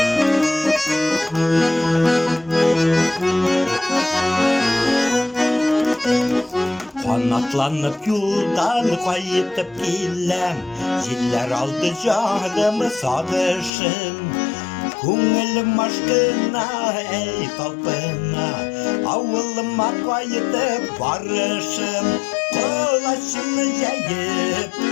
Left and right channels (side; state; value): right; drops out; at 13.7 s